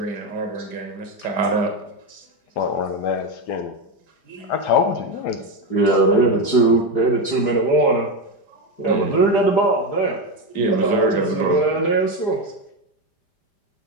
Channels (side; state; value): right; late; 5.0 ms